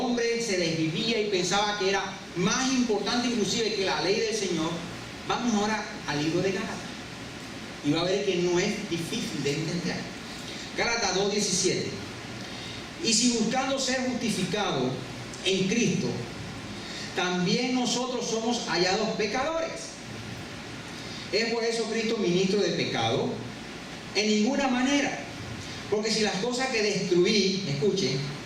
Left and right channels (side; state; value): both; identical; correlation 1.00